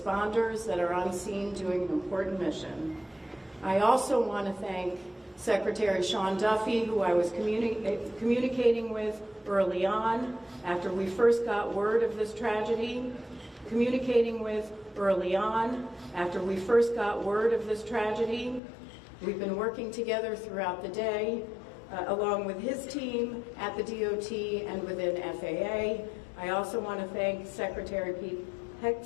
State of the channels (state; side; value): drops out; right; at 18.6 s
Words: that are on scene doing an important mission. I also want to thank Secretary Sean Duffy, who I was communicating with early on after we first got word of this tragedy, We've been working together throughout the day, along with his team at the DOT and within FAA. I also want to thank Secretary Pete